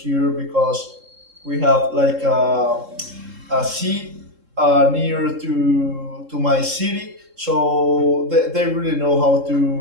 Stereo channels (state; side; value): late; left; 3.7 ms